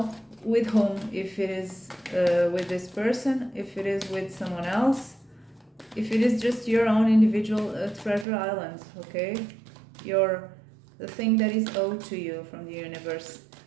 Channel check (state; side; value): drops out; left; at 8.2 s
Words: with whom, if it is with this person, if it is with someone else, if it is just your own individual treasure island, okay? The thing that is owed to you from the universe.